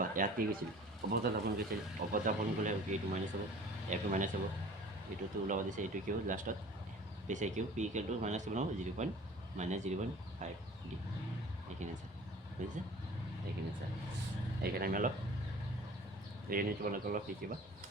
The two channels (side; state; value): both; normal; correlation 0.46